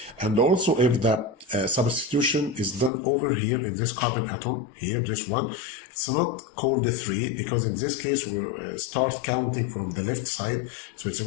And also if the substitution is done over here in this carbon atom, here, this one, it's not called 3, because in this case we start counting from the left side, so it's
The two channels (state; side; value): drops out; right; at 2.9 s